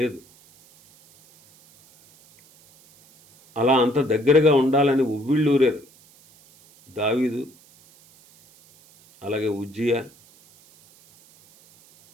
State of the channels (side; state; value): right; noise; hiss, 29 dB below the sound